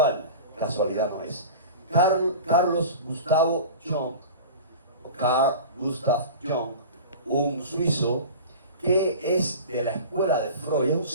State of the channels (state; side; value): inverted; both; correlation -0.35